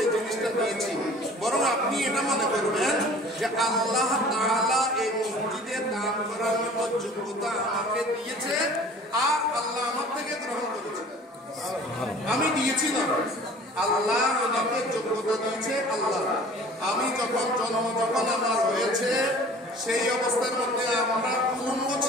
এই জিনিসটা দিয়েছি, বরং আপনি এটা মনে করবেন যে আল্লাহ তাআলা এই মসজিদে দান করার মতো যোগ্যতা আমাকে দিয়েছে, আর আল্লাহ আমার থেকে গ্রহণ করেছে। আমি দিয়েছি না, আল্লাহ আমাকে যোগ্যতা দিয়েছে। আল্লাহ, আমি যখন আমার হয়েছে সেই অবস্থার মধ্যে আমরা উলঙ্গ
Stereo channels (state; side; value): normal; both; correlation 0.47